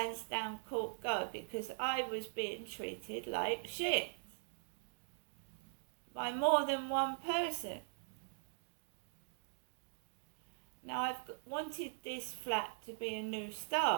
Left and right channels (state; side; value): silent; left; digital silence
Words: Court go because I was being treated like shit by more than one person. Now I've wanted this flat to be a new